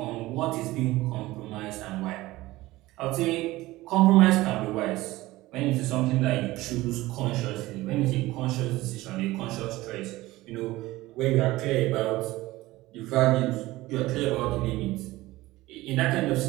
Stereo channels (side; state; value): left; quieter; 18.4 dB